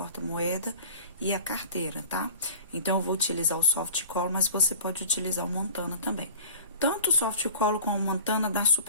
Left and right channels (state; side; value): inverted; both; correlation -0.41